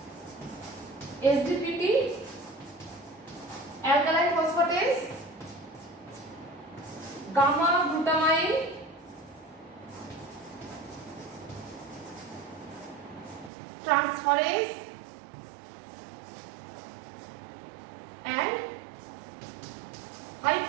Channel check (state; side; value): drops out; left; at 13.5 s